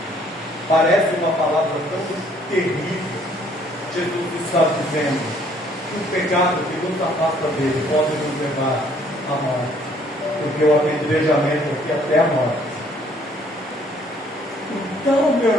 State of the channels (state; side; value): normal; both; correlation 0.62